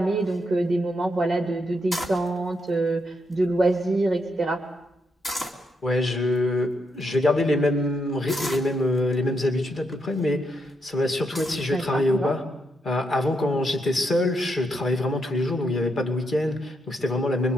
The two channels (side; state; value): both; normal; correlation 0.80